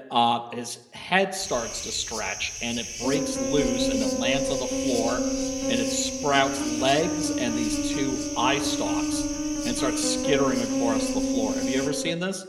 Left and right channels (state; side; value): identical; both; correlation 1.00